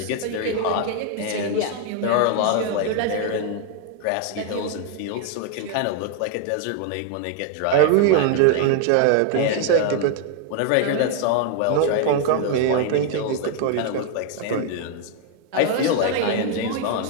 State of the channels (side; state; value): both; different; correlation 0.00